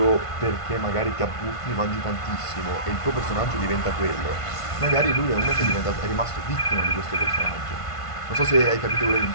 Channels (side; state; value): right; late; 1.5 ms